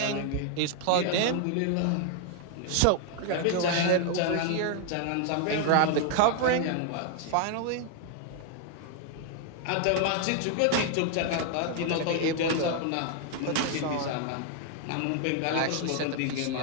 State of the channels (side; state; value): both; different; correlation 0.00